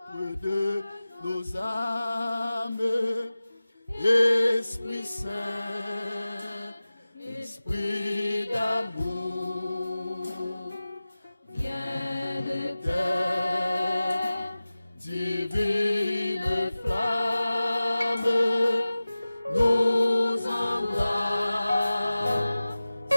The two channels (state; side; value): inverted; both; correlation -0.96